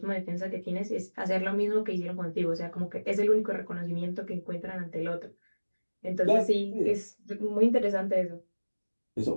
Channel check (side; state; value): both; inverted; correlation -1.00